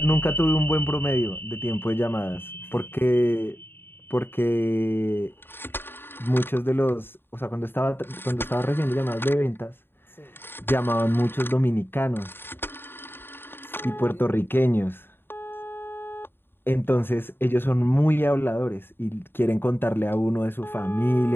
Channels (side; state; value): right; late; 0.10 ms